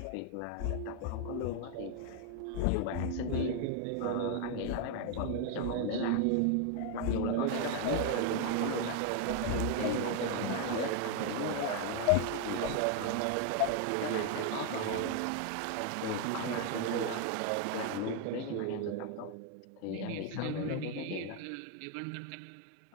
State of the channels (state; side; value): different; both; correlation 0.01